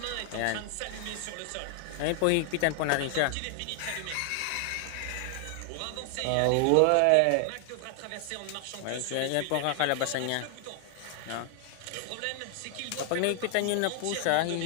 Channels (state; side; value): different; both; correlation 0.00